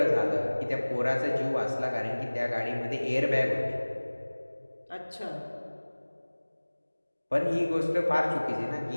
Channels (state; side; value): inverted; both; correlation -1.00